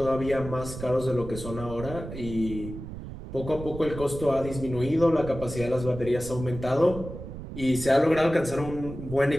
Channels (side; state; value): right; noise; rumble, 10 dB below the sound